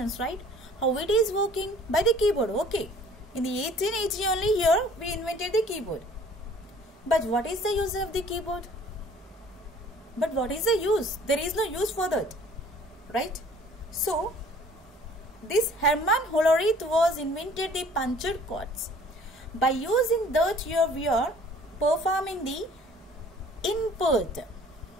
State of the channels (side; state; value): both; normal; correlation 0.53